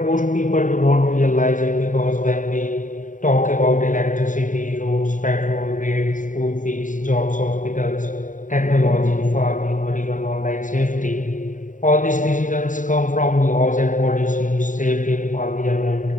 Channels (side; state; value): right; late; 0.37 ms